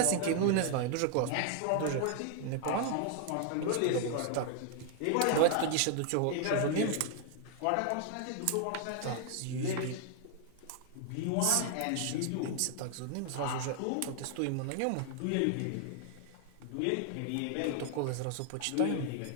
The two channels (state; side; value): different; both; correlation 0.00